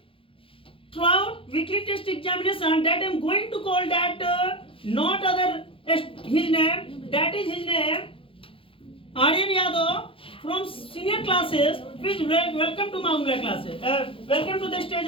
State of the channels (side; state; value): right; late; 0.26 ms